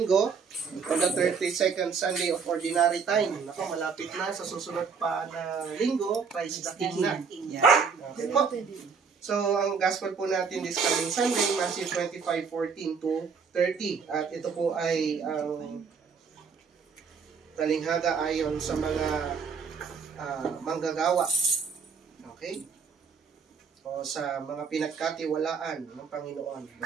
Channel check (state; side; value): quieter; left; 5.7 dB